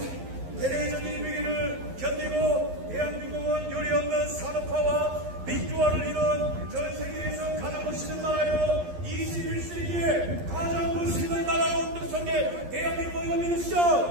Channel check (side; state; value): left; late; 11 ms